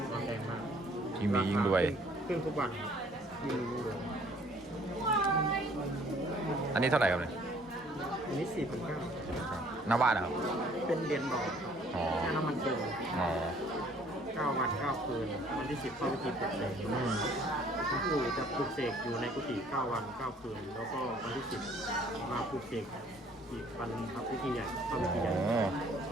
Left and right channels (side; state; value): both; normal; correlation 0.58